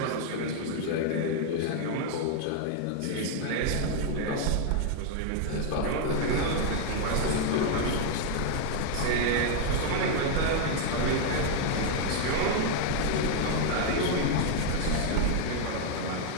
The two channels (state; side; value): different; both; correlation 0.00